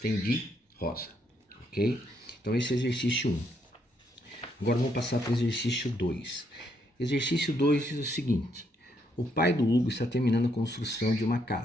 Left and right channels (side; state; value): both; normal; correlation 0.74